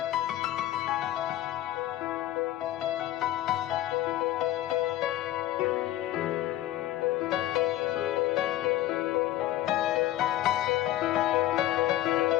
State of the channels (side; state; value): right; quieter; 14.1 dB